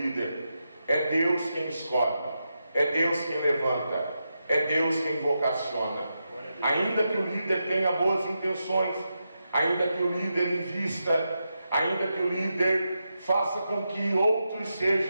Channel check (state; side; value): inverted; both; correlation -0.87